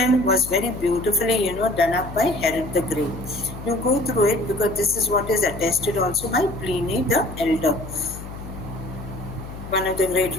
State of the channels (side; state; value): left; noise; hum, 12 dB below the sound